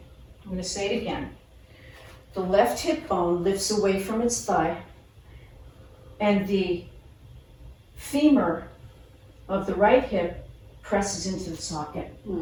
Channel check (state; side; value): identical; both; correlation 1.00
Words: I'm going to say it again. The left hip bone lifts away from its thigh and the femur of the right hip presses into the socket.